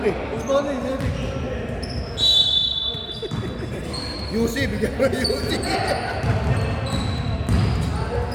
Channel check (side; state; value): both; identical; correlation 1.00